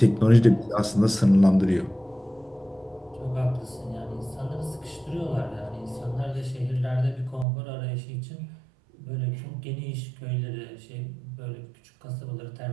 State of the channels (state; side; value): drops out; left; at 7.5 s